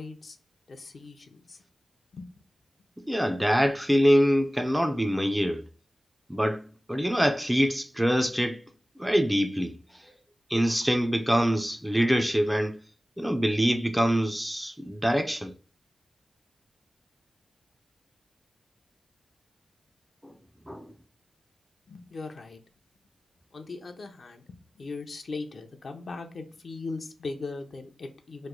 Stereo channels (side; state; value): both; normal; correlation 0.97